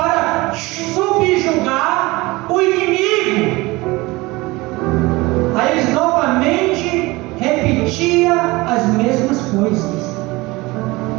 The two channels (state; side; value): quieter; left; 22.0 dB